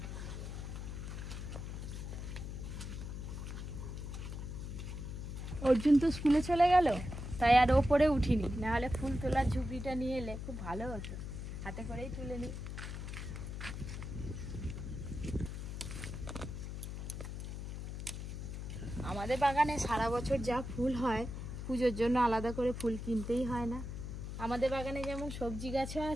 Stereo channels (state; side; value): noise; left; hum, 6 dB below the sound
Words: অর্জুন তো স্কুলে চলে গেল, তাই আর ওপরে উঠিনি, নাহলে ফুল তোলার ঝুপড়িটা নিয়ে এলে খুব ভালো হতো, হাতে করেই তুলে নিই। আমাদের বাগানে সারা বছর যা ফুল হয়, পুজোর জন্য আলাদা করে ফুল কিনতেই হয় না। আমাদের বাগানে যেমন সবজি গাছও